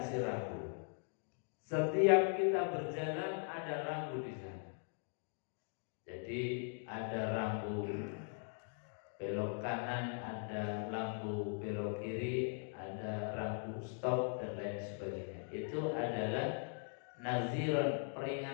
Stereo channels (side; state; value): right; silent; 51 dB below the other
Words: rambu. Setiap kita berjalan ada rambu di sana. Jadi ada rambu belok kanan, ada lampu belok kiri, ada rambu stop dan lain sebagainya. Itu adalah naziran,